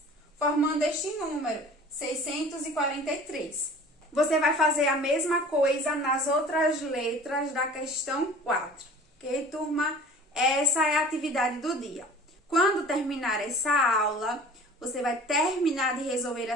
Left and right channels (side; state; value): both; normal; correlation 0.45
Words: Formando este número, 643. Você vai fazer a mesma coisa nas outras letras da questão 4. Ok, turma? Essa é a atividade do dia. Quando terminar essa aula, você vai terminar de resolver